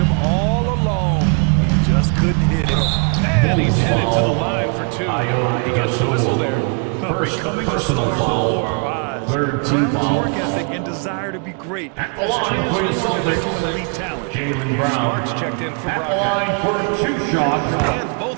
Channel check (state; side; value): quieter; left; 37.4 dB